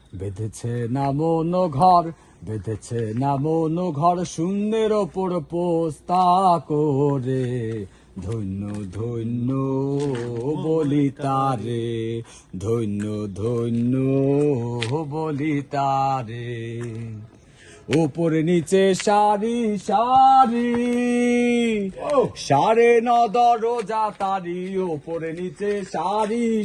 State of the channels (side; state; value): both; identical; correlation 1.00